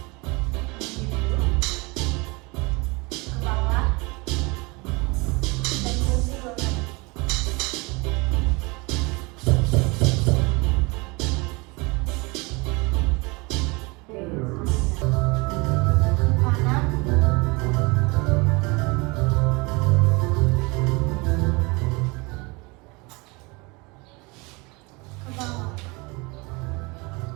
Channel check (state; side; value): quieter; left; 26.7 dB